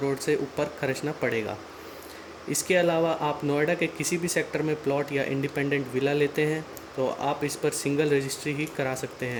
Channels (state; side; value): identical; both; correlation 1.00